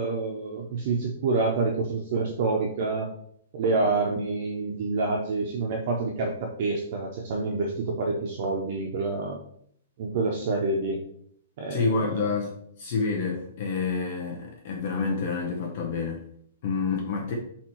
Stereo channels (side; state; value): both; inverted; correlation -0.42